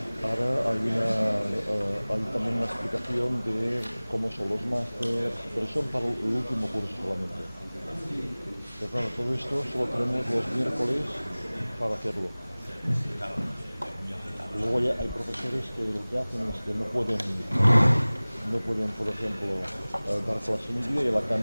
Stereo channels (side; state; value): both; inverted; correlation -1.00